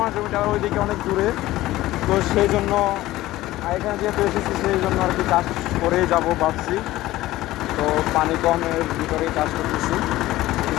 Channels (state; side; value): quieter; right; 16.5 dB